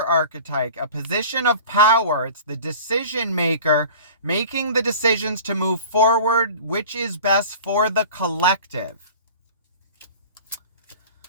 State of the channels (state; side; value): inverted; both; correlation -0.41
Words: archetype, a position of power. It's the decision maker, making the decisions to move forward, which is best for the collective.